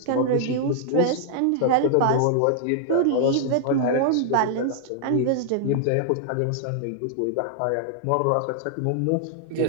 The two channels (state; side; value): different; both; correlation -0.01